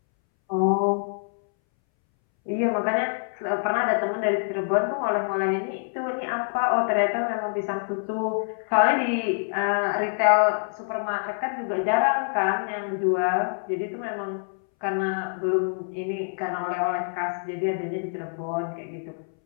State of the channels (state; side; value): silent; right; 61 dB below the other